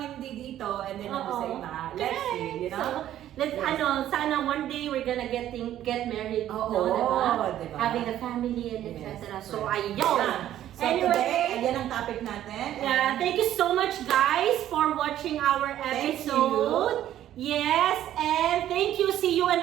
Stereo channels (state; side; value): quieter; left; 12.1 dB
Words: dito, and then nandun sa iba. Let's see, So, let's, Yes. sana one day we're gonna get married, Oo, diba? diba? Having a family and Yes, etc. So, right. ayun. So today, ayan ang topic natin. Yeah, thank you so much guys for watching our Thank episode. Yes, and thank you. See you in